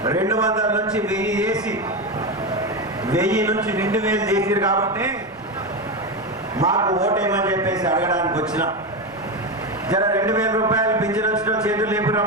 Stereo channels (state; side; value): normal; both; correlation 0.15